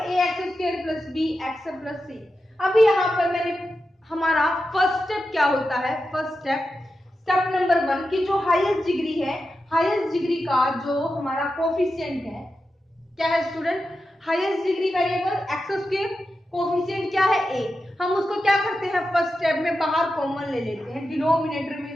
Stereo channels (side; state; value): both; normal; correlation 0.90